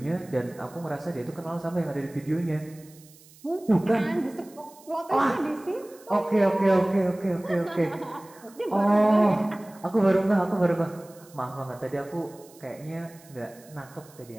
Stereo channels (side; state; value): right; noise; hiss, 25 dB below the sound